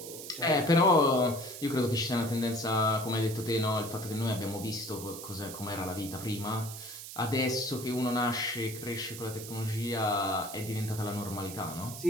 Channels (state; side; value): noise; right; hiss, 11 dB below the sound